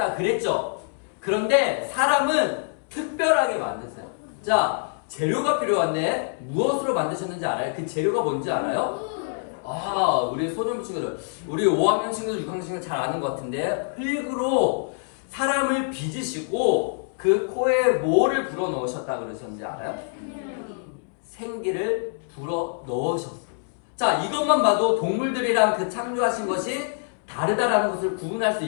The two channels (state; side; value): silent; right; digital silence